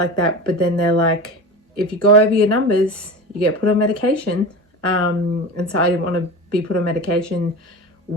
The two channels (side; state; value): both; normal; correlation 0.29